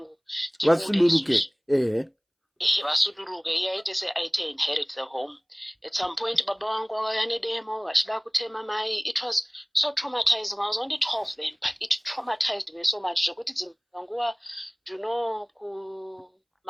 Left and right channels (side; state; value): both; identical; correlation 1.00